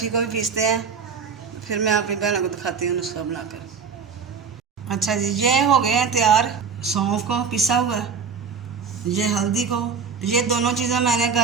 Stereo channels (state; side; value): quieter; left; 5.9 dB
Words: को भी पीसते हैं, फिर मैं अपनी बहनों को दिखाती हूँ नुस्खा बनाकर। अच्छा जी, ये हो गए हैं तैयार। सौंफ को पिसा हुआ, ये हल्दी को, ये दोनों चीज़ें मैंने